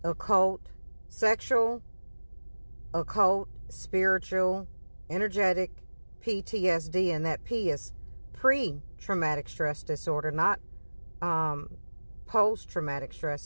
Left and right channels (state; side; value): inverted; both; correlation -1.00